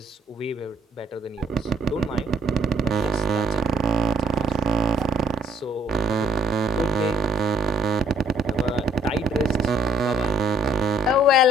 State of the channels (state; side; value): normal; both; correlation 0.63